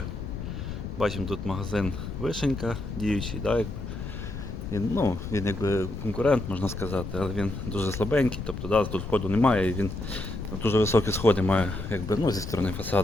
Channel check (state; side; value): noise; left; rumble, 7 dB below the sound